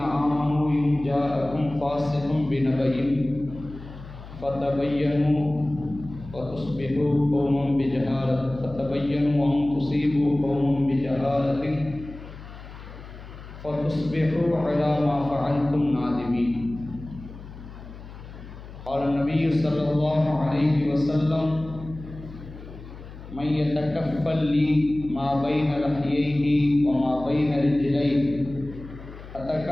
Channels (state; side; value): noise; left; hum, 15 dB below the sound